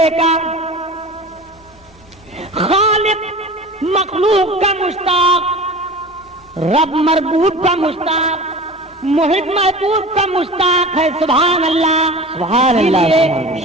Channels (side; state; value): both; normal; correlation 0.35